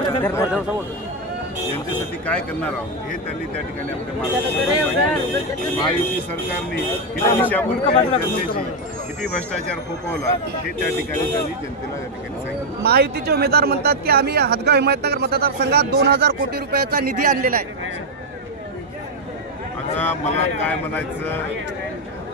जनतेसाठी काय करणार आहोत हे त्यांनी त्या ठिकाणी आपल्या मार्गदर्शन महायुती सरकारने किती दिशाभूल केली जनतेची किती भ्रष्टाचार फोपवला हे त्या ठिकाणी त्यांनी जनतेला त्या ठिकाणी सांगितलं। महायुतीचे उमेदवार म्हणतात की आम्ही हदगाव हिमायतनगर मतदारसंघात 2000 कोटी रुपयाचा निधी आणलेला आहे। आता मला काय म्हणायचं,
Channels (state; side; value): normal; both; correlation 0.03